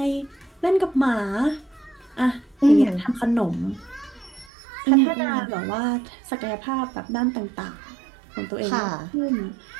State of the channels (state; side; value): drops out; left; at 4.5 s